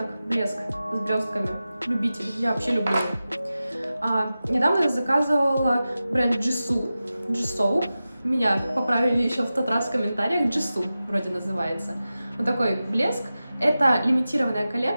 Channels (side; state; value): both; inverted; correlation -0.94